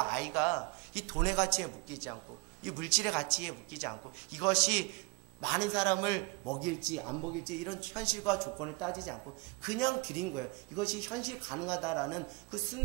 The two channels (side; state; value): left; quieter; 26.8 dB